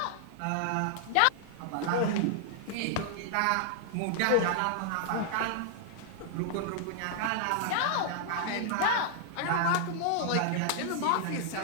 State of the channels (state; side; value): different; both; correlation -0.01